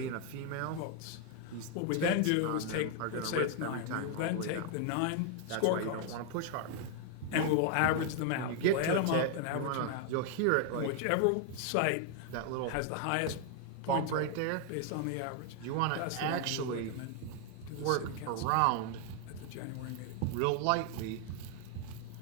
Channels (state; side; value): different; both; correlation 0.00